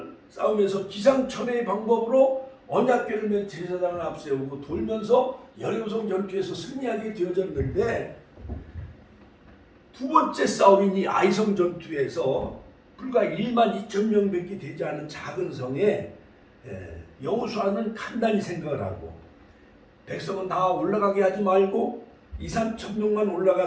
싸우면서 기상천외의 방법으로 언약궤를 맨 제사장을 앞세우고 돌면서 여리고성 전투에서 승리하게 되어졌는데 두 번째 싸움인 이 아이성 전투에서 불과 1만 2천 명밖에 되지 않은 작은 성에 여호수아는 간단히 생각을 하고 백성은 다 올라가게 하지 말고 2, 3천 명만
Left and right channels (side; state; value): both; identical; correlation 1.00